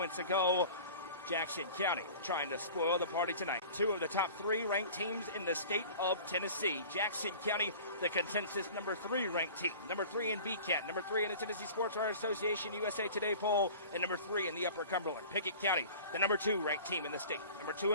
ago. Jackson County trying to spoil the party tonight. Two of the top three ranked teams in the state of Tennessee. Jackson County, the consensus number 3 ranked team. Number 3 in BCAT, number 3 in the Tennessee Sports Writers Association USA Today poll, and number 3 in the Upper Cumberland. Pickett County, the number 2 ranked team in the state. Number 2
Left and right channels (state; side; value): inverted; both; correlation -0.42